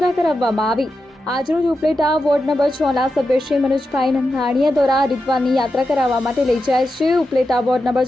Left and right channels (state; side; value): normal; both; correlation 0.89